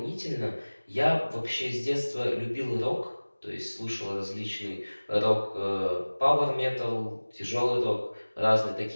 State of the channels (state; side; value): inverted; both; correlation -1.00